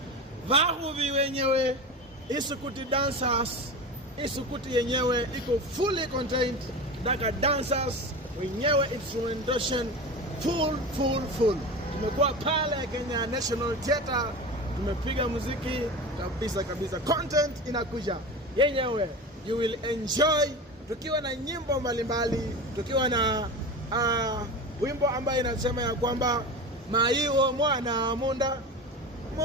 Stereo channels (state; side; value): normal; both; correlation 0.28